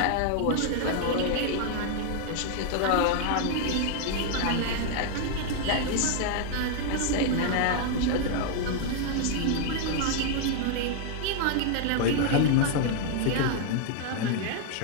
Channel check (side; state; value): both; different; correlation 0.00